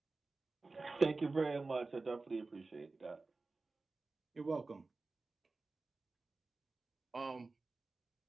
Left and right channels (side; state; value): left; quieter; 3.6 dB